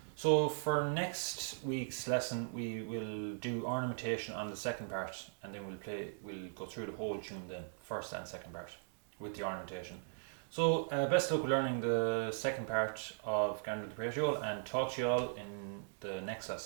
So for next week's lesson, we will do ornamentation on the second part, and then we'll go through the whole tune then, first and second part, with the ornamentation. So best of luck with learning the second part of Gander and the Pratie, and talk to you all in the next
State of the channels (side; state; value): left; silent; digital silence